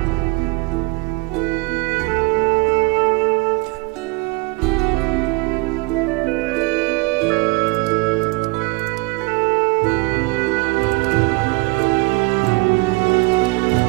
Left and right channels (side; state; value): left; quieter; 27.1 dB